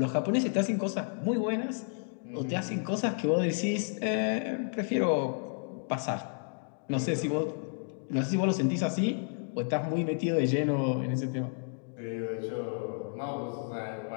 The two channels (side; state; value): right; silent; 57 dB below the other